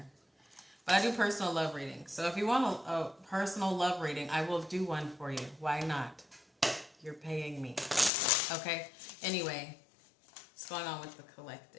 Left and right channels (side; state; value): right; drops out; at 8.1 s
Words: But I do personal love readings. So if you want a personal love reading, I will do one for you. Why not? You're paying me. Okay? Anyway, what's going on with the